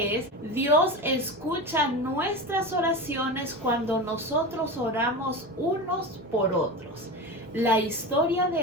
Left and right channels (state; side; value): normal; both; correlation 0.25